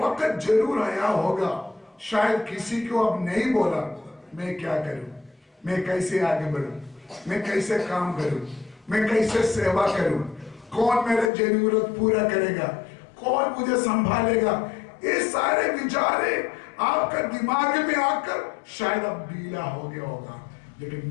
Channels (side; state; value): right; drops out; at 11.3 s